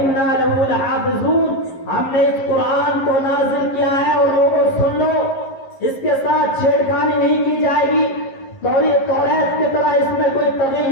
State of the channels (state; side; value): late; right; 11 ms